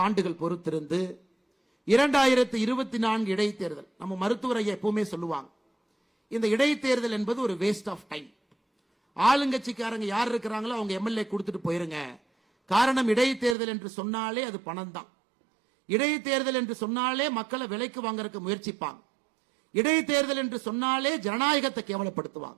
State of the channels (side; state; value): left; drops out; at 13.6 s